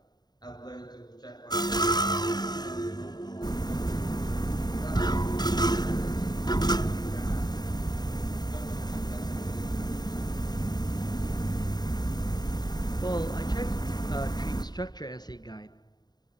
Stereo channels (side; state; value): right; late; 0.20 ms